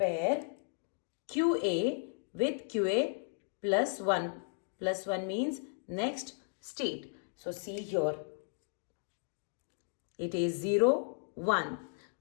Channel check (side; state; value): right; silent; digital silence